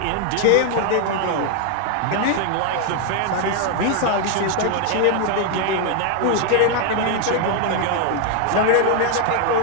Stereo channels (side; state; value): both; different; correlation 0.00